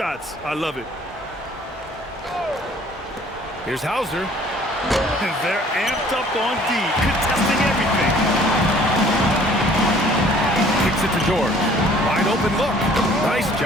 I love it. Here's Hauser. And they're amped up on D, contesting everything. Kicks it to George. Wide open look. Nice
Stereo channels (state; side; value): normal; both; correlation 0.55